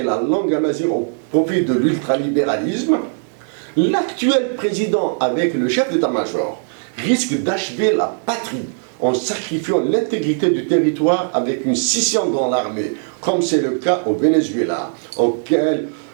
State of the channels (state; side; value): silent; left; digital silence